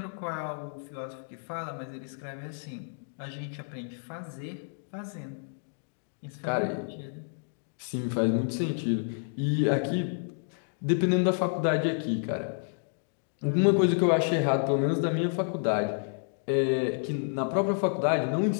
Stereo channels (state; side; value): silent; right; digital silence